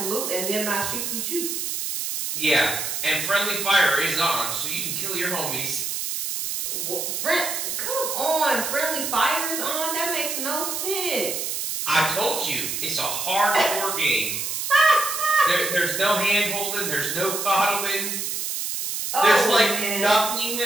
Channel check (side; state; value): right; noise; hiss, 3 dB below the sound